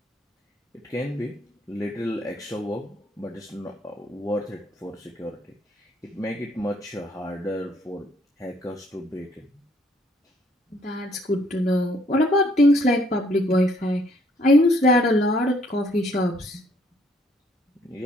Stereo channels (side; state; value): both; normal; correlation 0.66